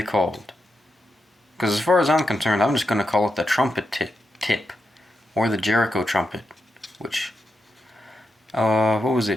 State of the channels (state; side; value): normal; both; correlation 0.86